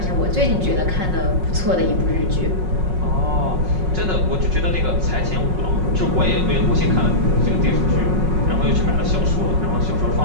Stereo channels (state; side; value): late; left; 5.4 ms